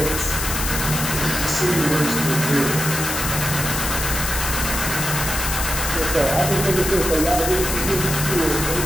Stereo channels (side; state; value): left; noise; hiss, 3 dB below the sound